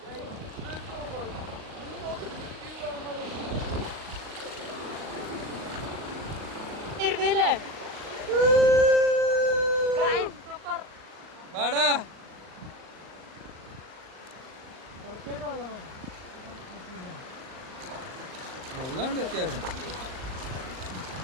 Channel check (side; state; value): left; late; 38 ms